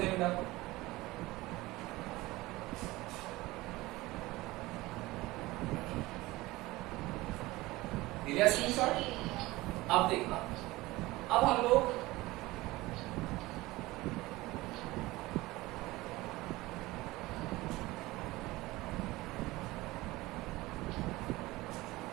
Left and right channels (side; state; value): left; quieter; 19.7 dB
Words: हैं बेटा। लिया स्क्रीनशॉट? अब देखना, अब हम लोग